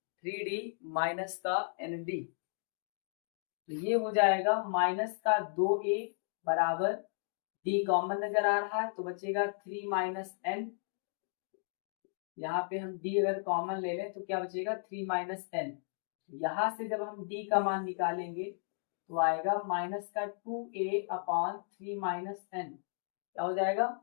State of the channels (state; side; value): silent; right; digital silence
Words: 3d माइनस का एन डी, तो ये हो जाएगा माइनस का 2a बराबर d कॉमन नजर आ रहा है तो बचेगा 3 माइनस एन, यहाँ पे हम d अगर कॉमन ले लें तो क्या बचेगा 3 माइनस एन, यहाँ से जब हम d का मान निकालेंगे तो आएगा माइनस का 2a अपॉन 3 माइनस एन, क्या हो जाएगा